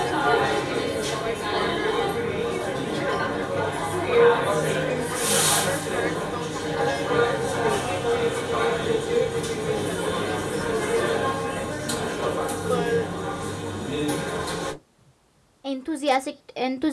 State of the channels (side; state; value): both; identical; correlation 1.00